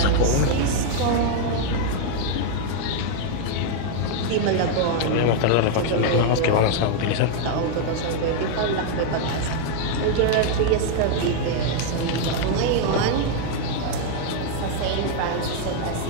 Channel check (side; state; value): both; different; correlation 0.00